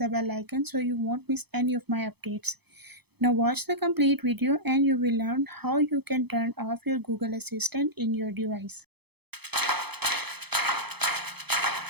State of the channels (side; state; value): left; late; 0.98 ms